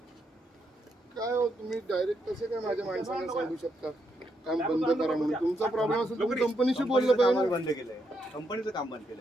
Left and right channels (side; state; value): both; normal; correlation 0.79